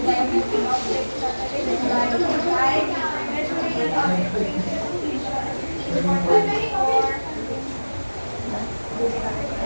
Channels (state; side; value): inverted; both; correlation -1.00